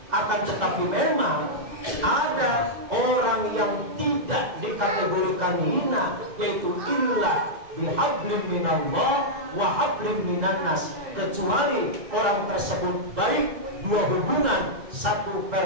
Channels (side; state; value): left; late; 2.0 ms